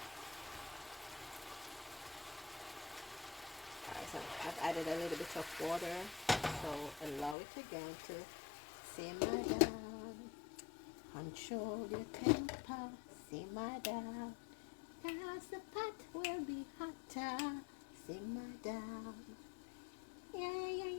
Alright, so I've added a little bit of water. So allow it again to simmer down. Control your temper, simmer down. Cause the pot will be hotter. Simmer down. Yeah.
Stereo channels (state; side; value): drops out; right; at 7.4 s